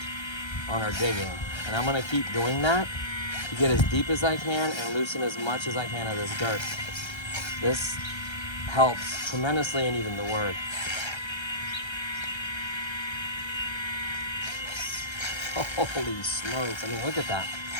on our digging. And I'm gonna keep doing that to get as deep as I can and loosen as much as I can of this dirt. This helps tremendously in even the word. Holy smokes, I mean, look at that.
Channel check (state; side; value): late; right; 1.3 ms